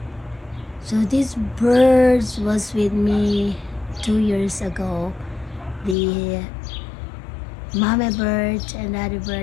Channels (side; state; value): right; drops out; at 6.0 s